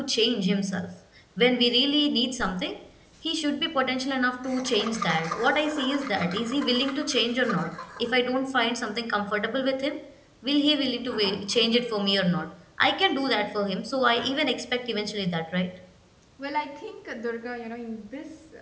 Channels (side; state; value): both; identical; correlation 1.00